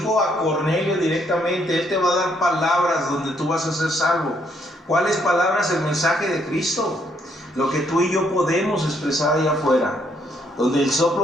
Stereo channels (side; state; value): both; normal; correlation 0.71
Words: a Cornelio directamente: Él te va a dar palabras donde tú vas a ser salvo. ¿Cuáles palabras? El mensaje de Cristo, lo que tú y yo podemos expresar allá afuera. donde el